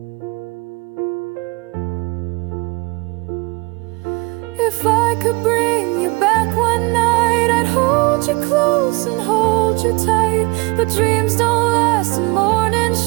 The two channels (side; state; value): left; quieter; 26.1 dB